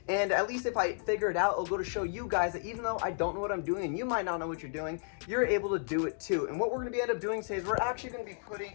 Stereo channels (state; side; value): silent; right; digital silence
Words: And at least if I figure it out, it'll go to show you guys that even though I don't know what I'm doing and you might not know what you're doing, you're able to do it too. And what we're gonna end up doing today is we're actually gonna be putting